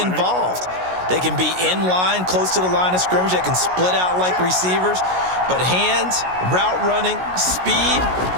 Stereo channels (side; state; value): left; late; 16 ms